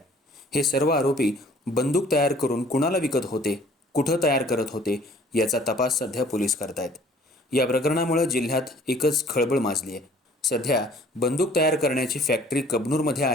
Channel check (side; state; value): both; normal; correlation 0.54